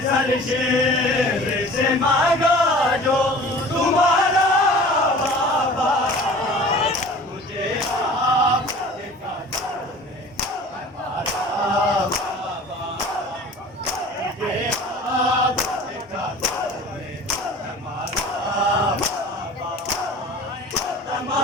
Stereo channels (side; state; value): both; normal; correlation 0.43